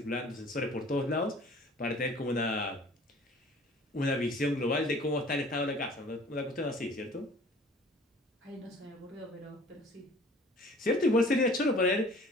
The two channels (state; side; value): normal; both; correlation 0.49